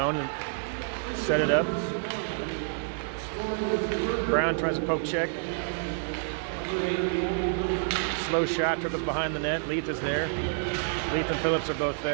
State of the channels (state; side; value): silent; left; 59 dB below the other